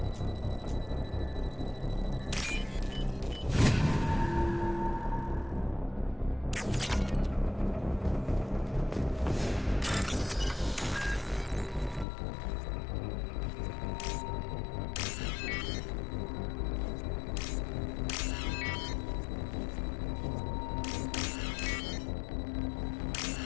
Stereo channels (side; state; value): right; drops out; at 12.1 s